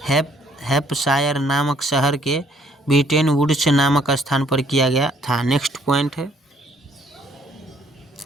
हैम्पशायर नामक शहर के ब्रिटेन वुड्स नामक स्थान पर किया गया था। नेक्स्ट पॉइंट है,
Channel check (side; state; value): both; normal; correlation 0.63